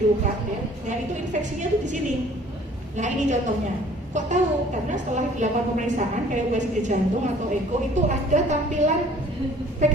ya. Nah itu infeksinya tuh di sini. Nah ini contohnya. Kok tahu? Karena setelah dilakukan pemeriksaan kayak USG jantung atau eko itu ada tampilan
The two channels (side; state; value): both; normal; correlation 0.53